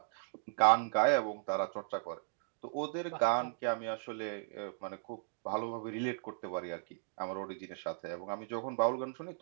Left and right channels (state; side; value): silent; left; digital silence